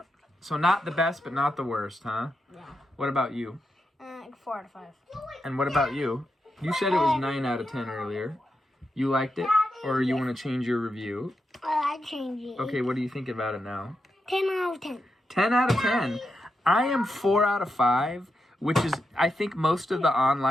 So not the best, but not the worst, huh? Yeah. What about you? 4 out of 5. And what about you? You said it was 9 out of 10 earlier. You liked it? Or you want to change your review? I changed it. Okay, what do you think about it now? 10 out of 10. 10 out of 10. I am 4 out of 5, which is, I think most of the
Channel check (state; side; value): normal; both; correlation 0.86